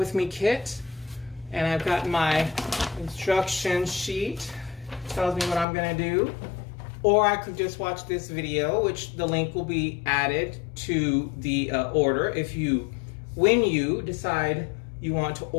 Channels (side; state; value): right; drops out; at 5.7 s